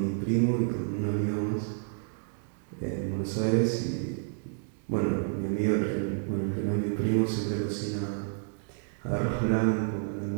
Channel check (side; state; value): left; silent; digital silence